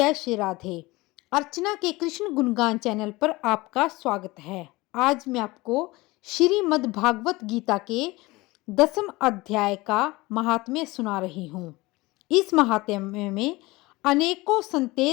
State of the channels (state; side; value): quieter; right; 21.4 dB